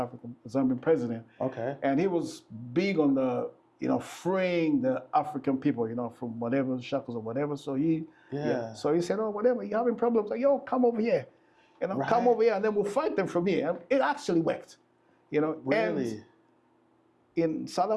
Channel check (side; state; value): both; identical; correlation 1.00